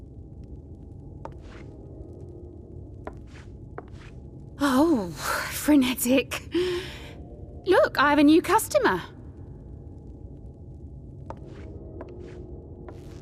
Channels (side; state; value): both; identical; correlation 1.00